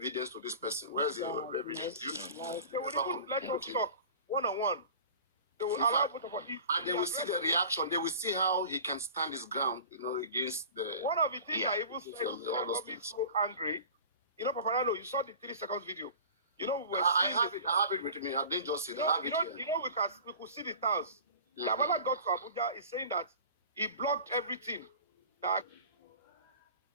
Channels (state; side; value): inverted; both; correlation -0.40